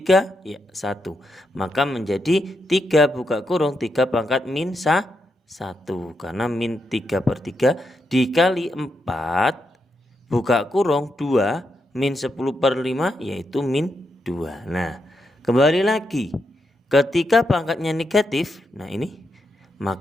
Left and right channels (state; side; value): normal; both; correlation 0.83